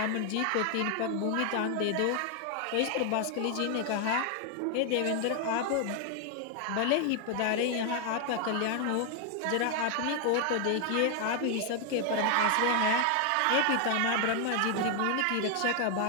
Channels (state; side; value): different; both; correlation 0.00